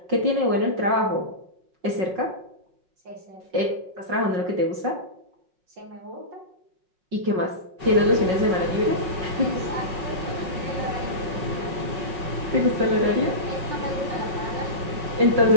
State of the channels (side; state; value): left; late; 5.4 ms